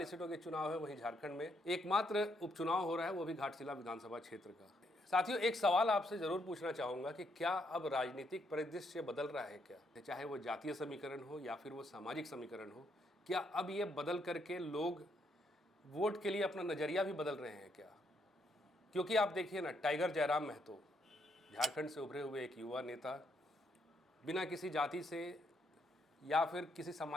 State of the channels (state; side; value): normal; both; correlation 0.75